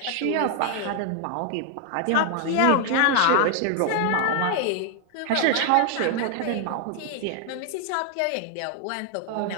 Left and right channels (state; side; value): different; both; correlation 0.00